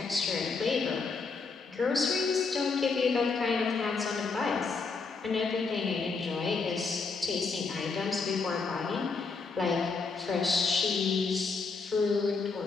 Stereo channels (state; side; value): quieter; right; 4.5 dB